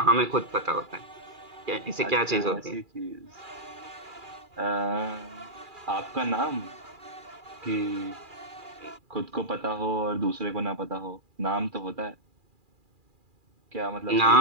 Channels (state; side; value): late; left; 2.4 ms